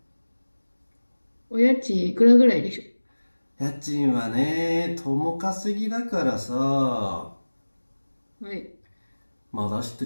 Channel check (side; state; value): both; inverted; correlation -1.00